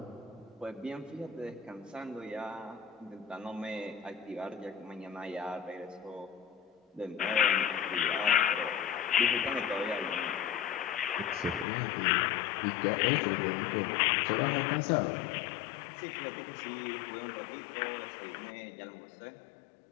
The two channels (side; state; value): right; drops out; at 11.7 s